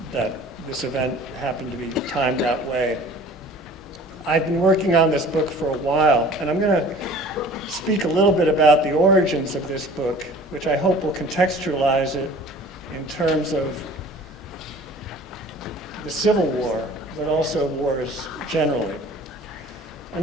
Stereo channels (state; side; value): normal; both; correlation 0.47